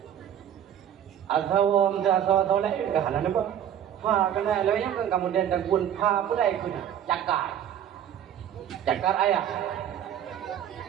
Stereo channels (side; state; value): left; quieter; 10.0 dB